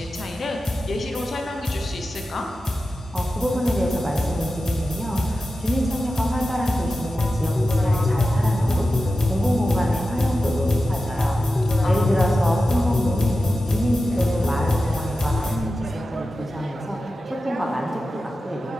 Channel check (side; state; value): both; normal; correlation 0.93